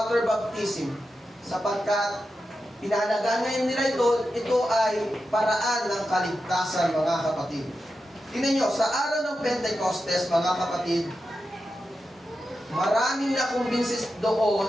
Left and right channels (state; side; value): normal; both; correlation 0.90